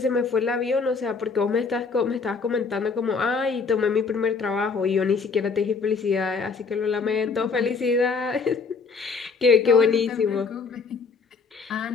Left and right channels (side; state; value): right; quieter; 4.9 dB